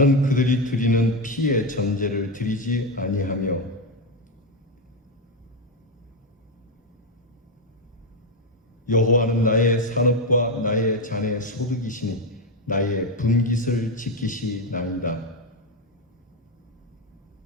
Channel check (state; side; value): normal; both; correlation 0.08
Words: 그들이 드리는 피의 전제를 드리지 아니하며 여호와는 나의 산업과 나의 잔의 소득이시니 나의 분깃을 지키시나이다.